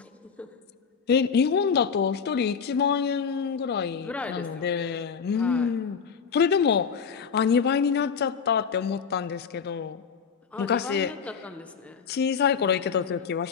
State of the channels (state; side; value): quieter; right; 6.3 dB